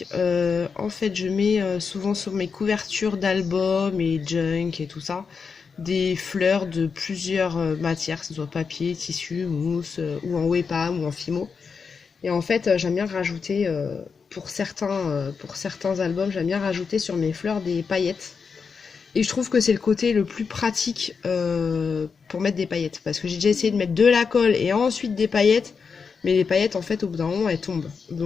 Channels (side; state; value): right; quieter; 5.6 dB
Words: En fait je mets souvent sur mes couvertures d'albums et junk et tout ça des fleurs de plusieurs matières, que ce soit papier, tissu, mousse ou en Wepam ou en Fimo. Et en fait j'aime bien rajouter pour certains albums, j'aime bien rajouter sur mes fleurs des paillettes. Et je trouve que c'est le côté le plus pratique pour mettre des paillettes. Parce que j'ai déjà essayé de mettre de la colle et ensuite des paillettes. Mais les paillettes, en fait, au bout d'un moment, elles tombent.